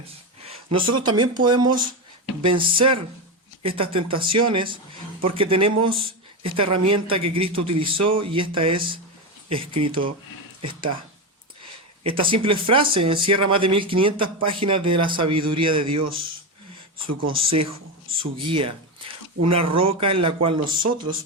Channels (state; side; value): normal; both; correlation 0.14